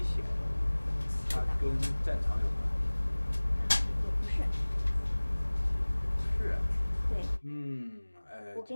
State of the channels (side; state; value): both; inverted; correlation -1.00